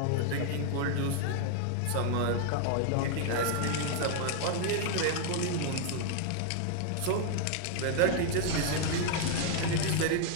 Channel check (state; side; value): different; both; correlation 0.00